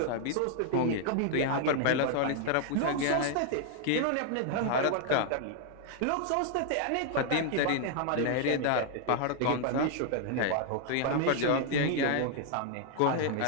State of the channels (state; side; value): different; both; correlation 0.00